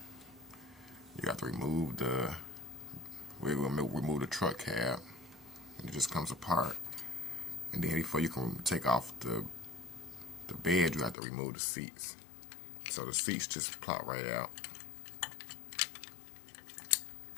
you got to remove remove the truck cab, and it just comes apart. And then before you can take off the bed, you have to remove the seats. So the seats just plop right out.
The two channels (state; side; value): drops out; right; at 11.2 s